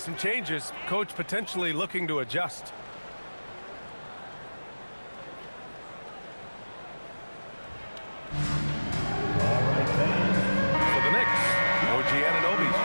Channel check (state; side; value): inverted; both; correlation -1.00